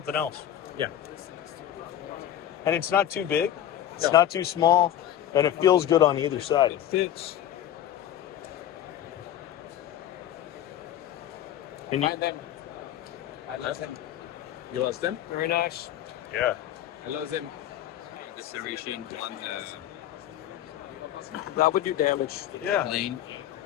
else. Yeah. And it's not too big. It's No. not too small, and it feels good on either side. It fits. And I lost them. You lost them? Very nice. Yeah. I lost them. The serration one. That would do damage. Yeah. Lane.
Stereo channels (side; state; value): right; quieter; 11.4 dB